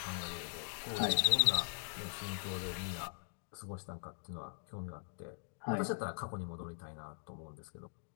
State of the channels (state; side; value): silent; right; digital silence